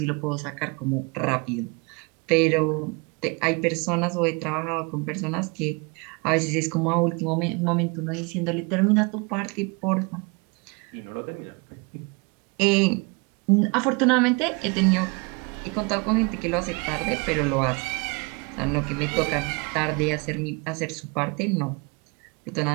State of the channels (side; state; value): left; quieter; 30.3 dB